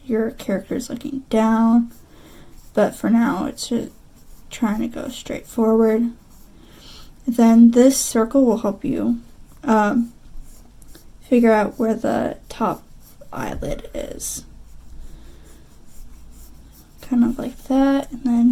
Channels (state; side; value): identical; both; correlation 1.00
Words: your character is looking down, but for now it's just trying to go straight forward. Then this circle will help you figure out where the top eyelid is. Kind of like that, and